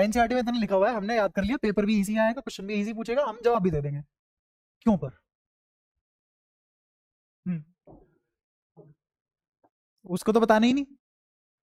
एनसीईआरटी में इतना लिखा हुआ है, हमने याद कर लिया, पेपर भी इजी आएगा, क्वेश्चन भी इजी पूछेगा, हम जवाब भी दे देंगे। क्यों पर हम्म, उसको तो बताना ही नहीं।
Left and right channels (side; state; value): both; identical; correlation 1.00